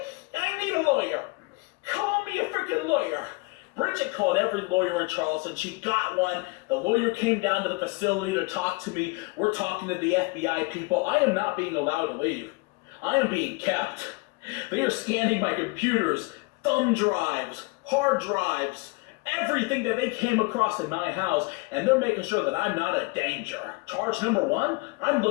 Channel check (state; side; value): quieter; right; 27.1 dB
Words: I need a lawyer. Call me a freaking lawyer. Bridget called every lawyer in Charleston. She got one. The lawyer came down to the facility to talk to me. We're talking to the FBI people. I am not being allowed to leave. I am being kept. They are scanning my computers, thumb drives, hard drives, everything that they came across in my house, and they're making sure that I'm not a danger. Charge number 1, I'm